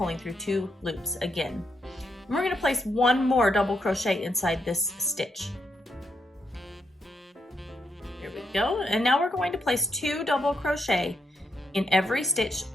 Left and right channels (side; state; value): both; normal; correlation 0.80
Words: through 2 loops again. And we're going to place 1 more double crochet inside this stitch. There we go. And now we're going to place 2 double crochet in every stitch